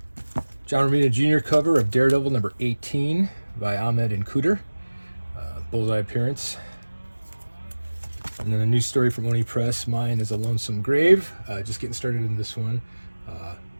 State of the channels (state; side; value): inverted; both; correlation -1.00